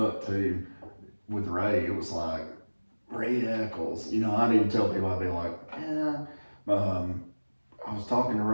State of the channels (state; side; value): inverted; both; correlation -1.00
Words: up too, with Ray, it was like, Ray Echols. You know, I'd even tell people, I'd be like, I was talking to